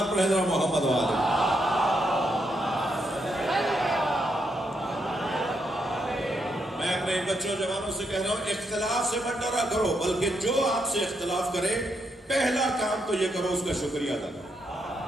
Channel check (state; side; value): normal; both; correlation 0.79